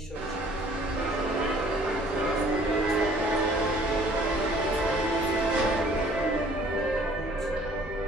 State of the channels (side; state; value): both; normal; correlation 0.55